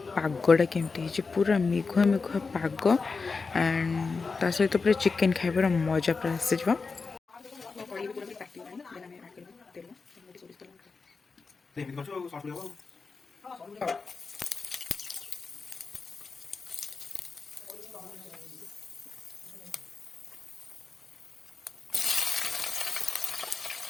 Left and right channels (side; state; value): right; quieter; 4.5 dB